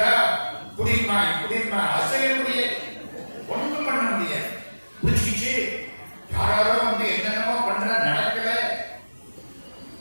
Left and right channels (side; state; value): both; inverted; correlation -1.00